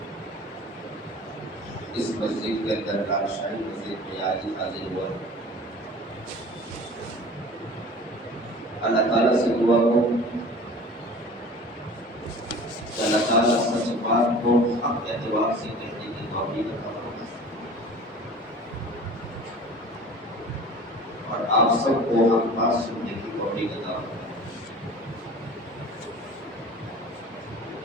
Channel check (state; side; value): normal; both; correlation 0.42